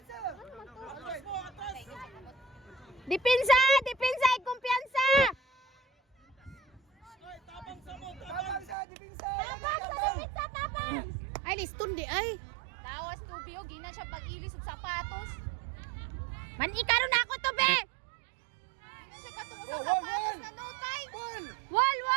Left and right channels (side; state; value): left; drops out; at 8.8 s